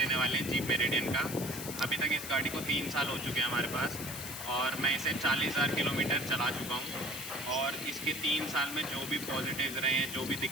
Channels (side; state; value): left; noise; hiss, 8 dB below the sound